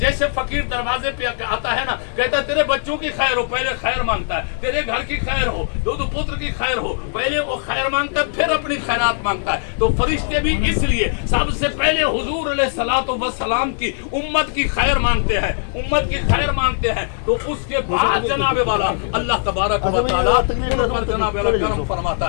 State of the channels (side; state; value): right; silent; 62 dB below the other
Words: फकीर दरवाजे पे आता है ना, कहता है तेरे बच्चों की खैर हो, पहले खैर मांगता है, तेरे घर की खैर हो, दो पुत्र की खैर हो, पहले वो खैर मांगता है, फिर अपनी खैरात मांगता है। तो फरिश्ते भी इसलिए सबसे पहले हुजूर अलैहिस्सलातु वस्सलाम की उम्मत की खैर मांगते हैं, उम्मत की खैर मांगते हैं। तो उसके बाद जनाबे वाला अल्लाह तबारक व तआला उन पर जनाबे वाला करम फरमाता